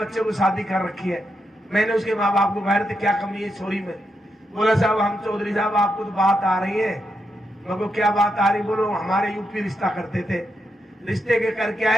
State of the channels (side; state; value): both; normal; correlation 0.84